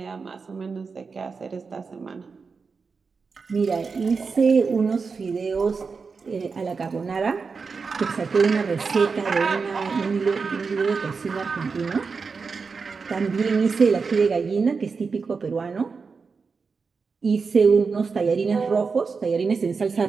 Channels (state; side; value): quieter; left; 5.0 dB